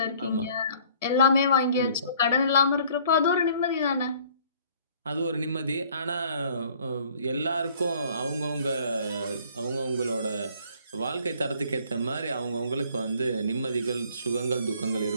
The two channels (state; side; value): inverted; both; correlation -0.56